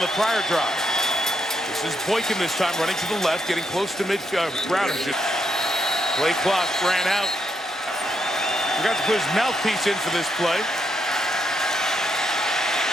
the prior drive. This is Boykin this time running to the left, getting close to midfield. Play clock ran out. Forgot to put his mouthpiece in for this play.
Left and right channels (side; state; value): both; normal; correlation 0.79